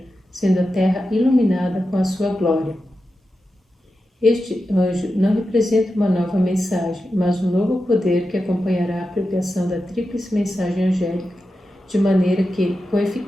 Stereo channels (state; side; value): normal; both; correlation 0.91